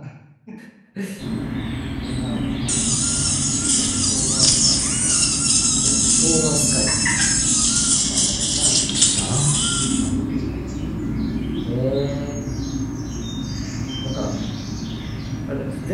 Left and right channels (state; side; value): identical; both; correlation 1.00